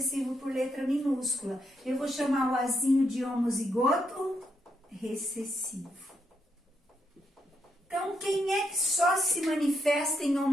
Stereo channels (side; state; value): both; normal; correlation 0.79